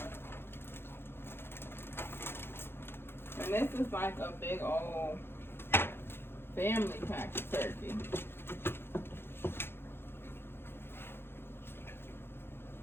this is like a big old family pack of turkey.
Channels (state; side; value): late; right; 0.11 ms